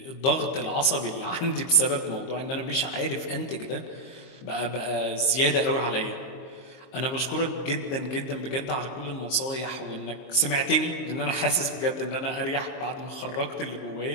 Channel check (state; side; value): late; right; 23 ms